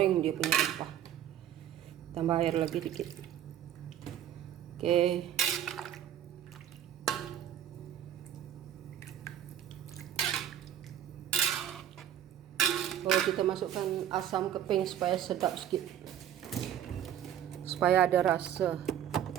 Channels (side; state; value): left; quieter; 10.5 dB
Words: dia punya rempah. Tambah air lagi dikit. Oke. Oh, kita masukkan asam keping supaya sedap sedikit, supaya ada rasa.